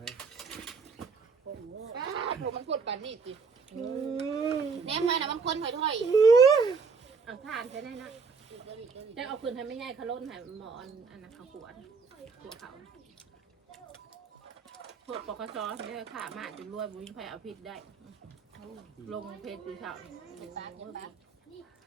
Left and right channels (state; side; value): quieter; left; 5.1 dB